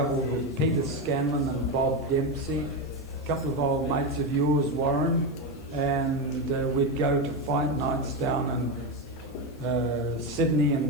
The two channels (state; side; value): noise; left; hiss, 29 dB below the sound